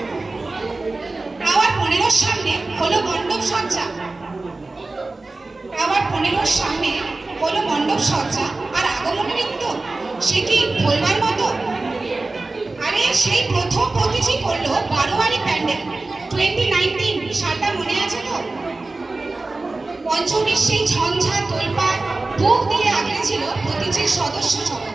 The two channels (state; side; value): quieter; left; 3.3 dB